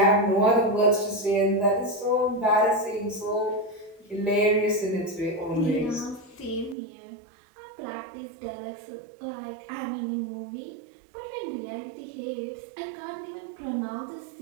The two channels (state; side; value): drops out; left; at 6.8 s